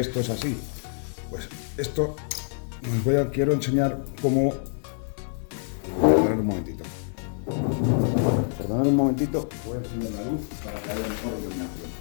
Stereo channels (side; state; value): right; silent; 61 dB below the other